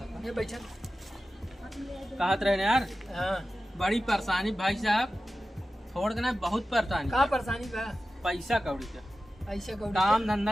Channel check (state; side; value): normal; both; correlation 0.94